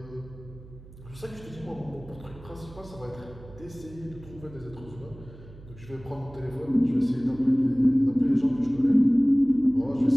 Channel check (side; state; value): right; noise; hum, 19 dB below the sound